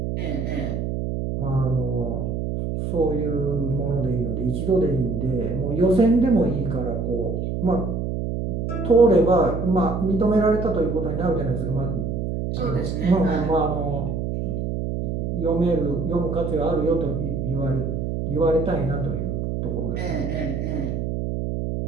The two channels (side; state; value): right; noise; hum, 2 dB below the sound